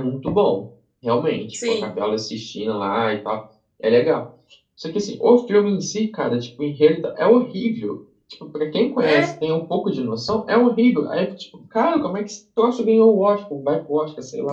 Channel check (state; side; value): identical; both; correlation 1.00